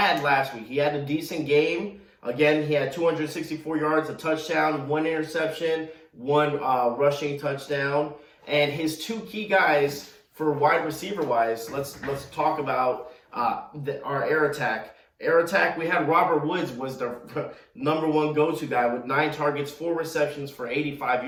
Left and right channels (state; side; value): identical; both; correlation 1.00